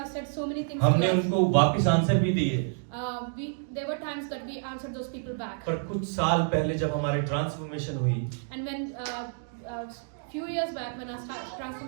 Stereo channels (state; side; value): silent; left; digital silence